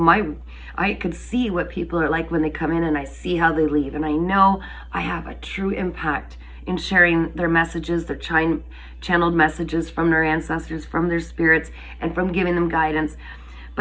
I could see what people are like when they come in, and I see how they leave, and I know I have a true impact in sharing their messages, their channeled messages from their ancestors, from their spirits, and from giving them guidance.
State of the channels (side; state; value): both; identical; correlation 1.00